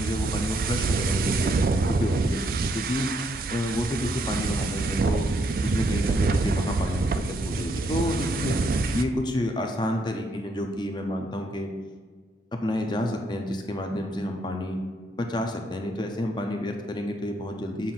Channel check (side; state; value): both; normal; correlation 0.74